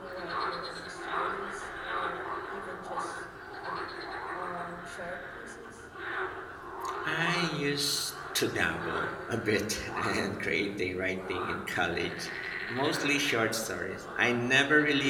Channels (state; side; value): identical; both; correlation 1.00